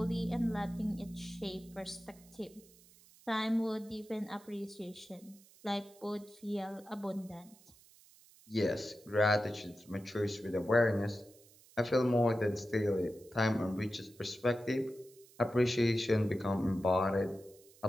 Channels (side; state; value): right; noise; hiss, 25 dB below the sound